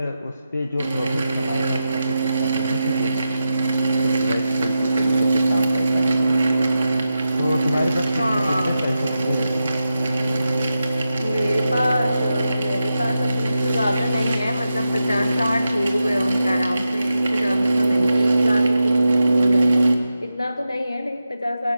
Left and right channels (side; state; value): both; inverted; correlation -0.90